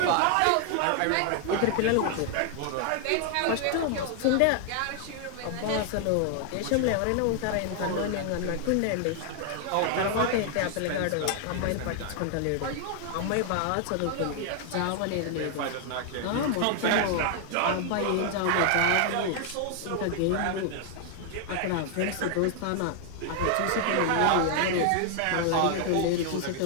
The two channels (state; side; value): different; both; correlation 0.00